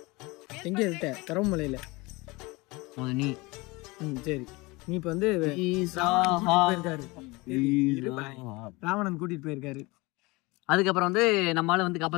எங்க இருக்க? கரவமலையில நீ. சரி, நீ இப்ப வந்து போயிருக்காரு, ராவணன் கூட்டிட்டு போயிருக்காரு. அதுக்கப்புறம் வந்து நம்மளால வந்து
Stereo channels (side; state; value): right; quieter; 23.9 dB